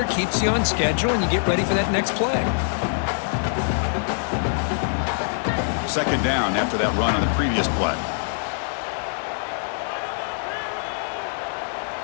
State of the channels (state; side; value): silent; right; digital silence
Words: keeps you on schedule, and you get ready for that next play. 2nd down after that run on the previous play.